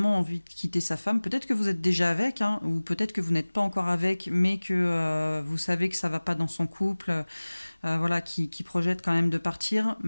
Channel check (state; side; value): inverted; both; correlation -1.00